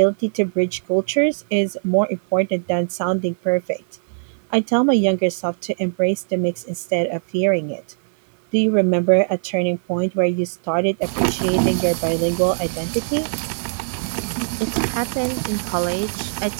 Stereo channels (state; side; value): silent; left; 58 dB below the other